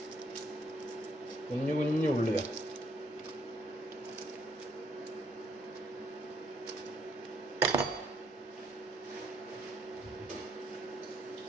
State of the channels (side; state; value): both; normal; correlation 0.69